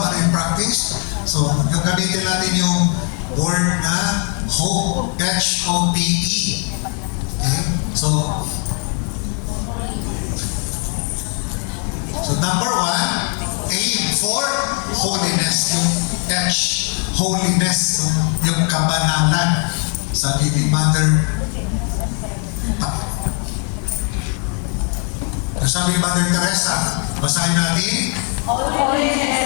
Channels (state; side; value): quieter; right; 39.1 dB